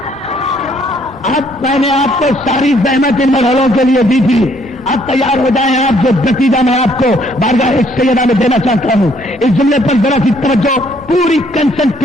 اب میں نے آپ کو ساری زحمت ان مرحلوں کے لیے دی تھی. اب تیار ہو جائیں آپ. جو نتیجہ میں آپ کو بارگاہ سیدہ میں دینا چاہتا ہوں اس جملے پر ذرا سی توجہ پوری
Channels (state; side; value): normal; both; correlation 0.66